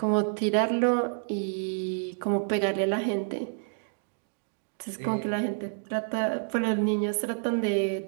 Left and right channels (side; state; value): left; silent; digital silence